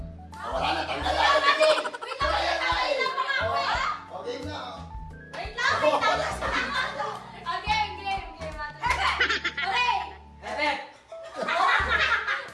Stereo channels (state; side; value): identical; both; correlation 1.00